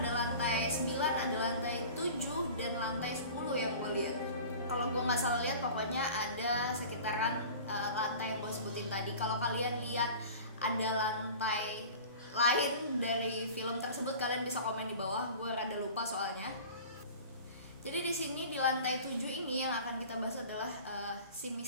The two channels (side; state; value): both; inverted; correlation -0.40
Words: lantai 9, ada lantai 7, dan lantai 10 yang gue lihat. Kalau gue nggak salah lihat, pokoknya ada sekitaran lantai yang gue sebutin tadi. Kalau kalian lihat ada lantai lain dari film tersebut, kalian bisa komen di bawah. Gue rada lupa soalnya. Jadi di sini di lantai 7 ini yang akan kita bahas adalah si